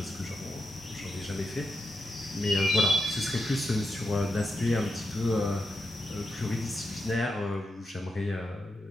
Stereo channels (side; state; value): both; normal; correlation 0.86